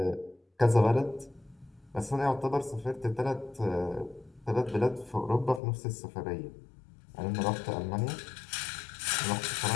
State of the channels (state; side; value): drops out; right; at 5.6 s